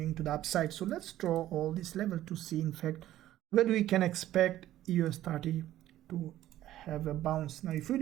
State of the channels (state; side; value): quieter; left; 13.6 dB